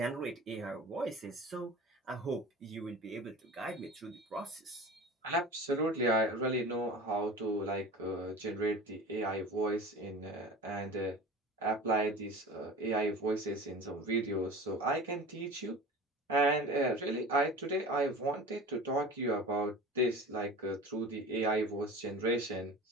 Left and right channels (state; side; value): normal; both; correlation 0.36